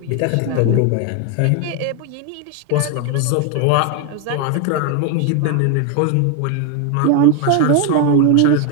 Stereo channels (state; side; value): different; both; correlation 0.01